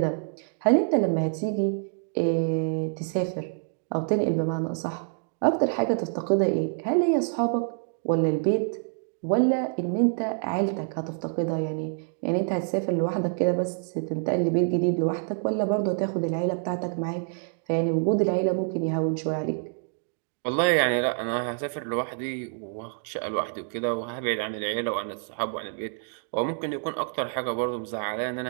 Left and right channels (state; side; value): silent; left; 60 dB below the other